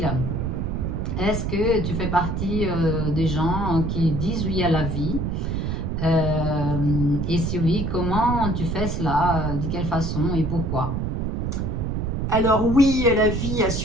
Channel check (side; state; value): right; noise; rumble, 1 dB below the sound